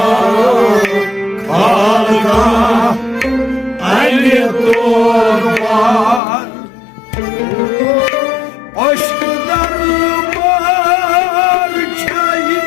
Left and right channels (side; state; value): right; drops out; at 6.2 s